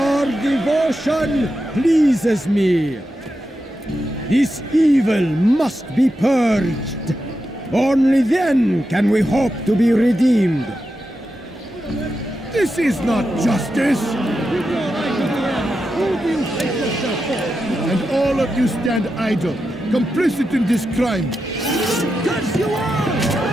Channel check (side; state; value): both; normal; correlation 0.88